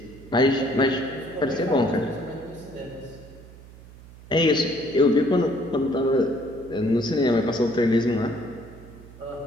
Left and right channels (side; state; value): right; noise; hum, 19 dB below the sound